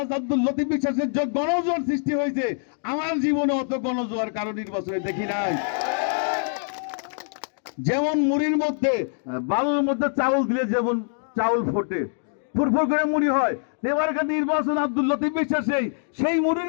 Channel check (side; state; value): right; silent; digital silence